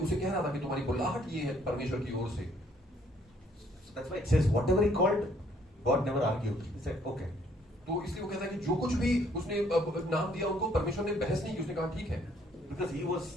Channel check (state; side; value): normal; both; correlation 0.65